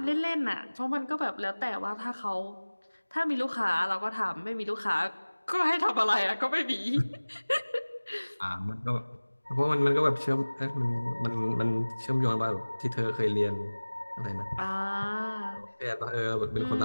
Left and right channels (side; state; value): both; inverted; correlation -1.00